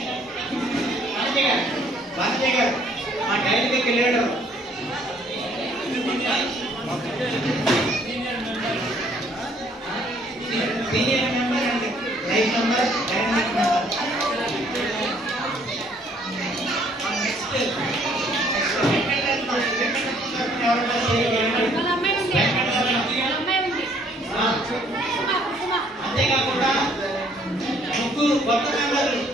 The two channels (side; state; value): both; normal; correlation 0.63